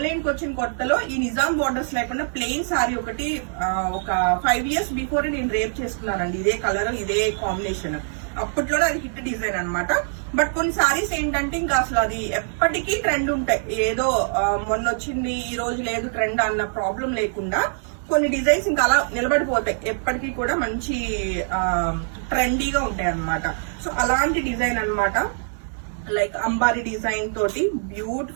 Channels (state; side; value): silent; left; 63 dB below the other